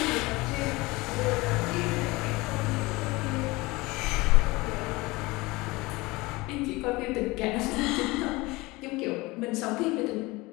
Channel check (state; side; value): quieter; right; 22.4 dB